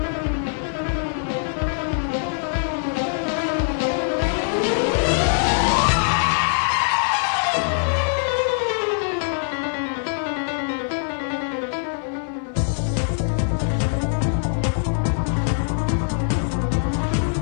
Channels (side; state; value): right; silent; 57 dB below the other